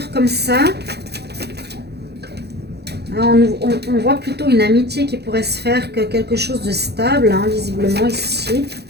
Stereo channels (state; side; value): late; left; 0.48 ms